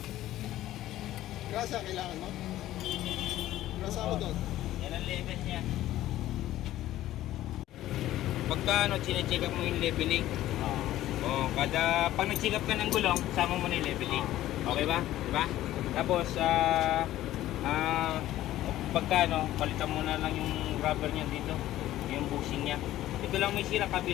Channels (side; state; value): right; quieter; 14.3 dB